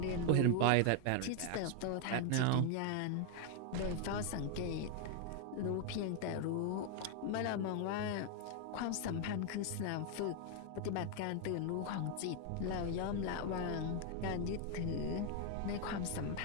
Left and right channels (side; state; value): both; different; correlation 0.00